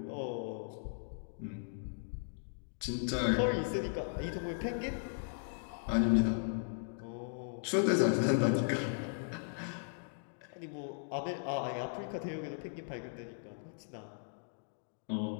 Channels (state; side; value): silent; right; digital silence